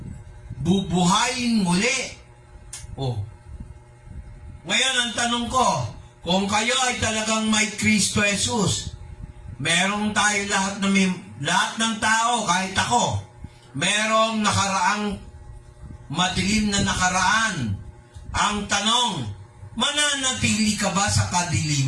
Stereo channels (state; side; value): identical; both; correlation 1.00